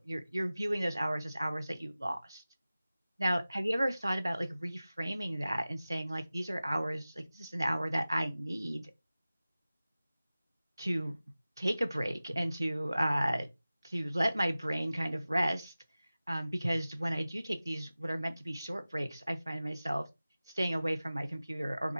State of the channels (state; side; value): inverted; both; correlation -0.97